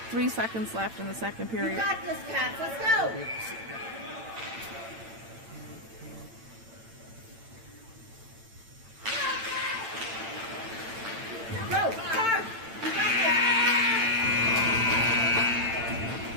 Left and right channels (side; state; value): left; late; 8.9 ms